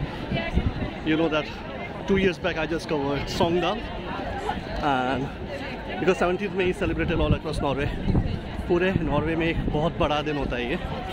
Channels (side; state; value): both; identical; correlation 1.00